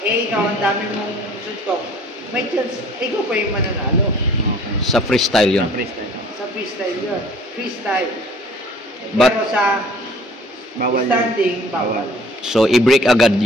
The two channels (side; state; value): both; normal; correlation 0.52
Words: Ikaw, ang dami mong suntok. May chance, ikaw pa yung mananalo. Okay. Sa freestyle yun. Sa freestyle yun. Freestyle. But- Pero sa Bawal standing, yun. bawal. So, i-break agad